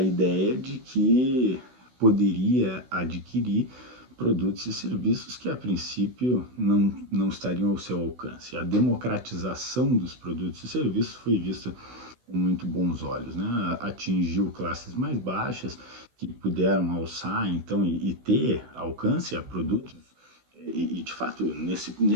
de que poderia adquirir produtos e serviços que a princípio não estariam ao seu alcance. A democratização dos produtos e serviços foi vista com muito bons olhos, né? Atingiu classes mais baixas que puderam alçar então e ter alcance a produtos de fato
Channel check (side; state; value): left; late; 16 ms